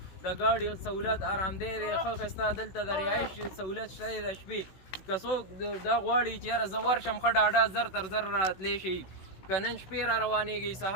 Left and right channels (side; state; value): right; late; 16 ms